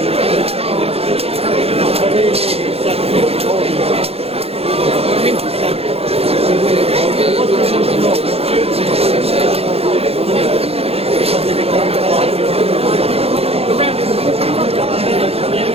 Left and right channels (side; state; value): left; late; 0.29 ms